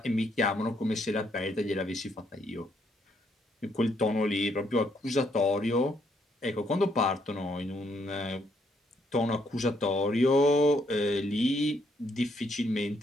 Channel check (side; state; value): both; normal; correlation 0.72